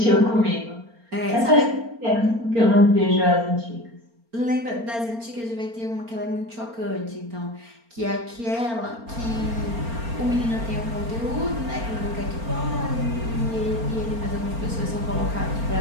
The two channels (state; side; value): late; left; 4.4 ms